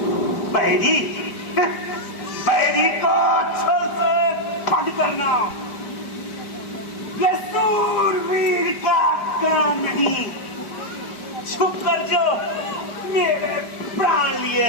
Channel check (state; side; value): late; right; 5.0 ms